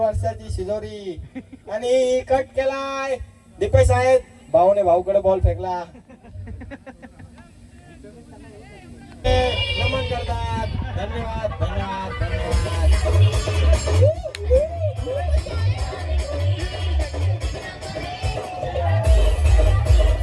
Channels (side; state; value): both; identical; correlation 1.00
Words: शिजोरी, आणि कट केलाय दीपेश आहेत. भाऊने भाऊकडे बॉल फेकला. नमन करतात. धन्यवाद.